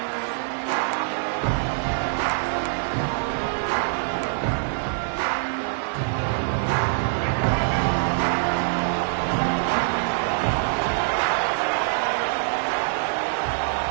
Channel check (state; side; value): silent; left; 62 dB below the other